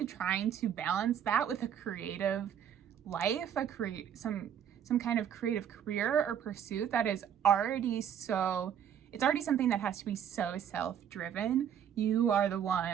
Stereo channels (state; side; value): quieter; left; 9.0 dB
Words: trying to balance that with a creative life, some kind of creative career or pursuit that is already it's already something that has to be so self-driven. You are the